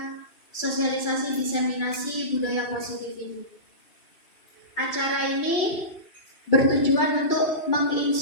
sosialisasi diseminasi budaya positif ini. Acara ini bertujuan untuk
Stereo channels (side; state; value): right; late; 2.3 ms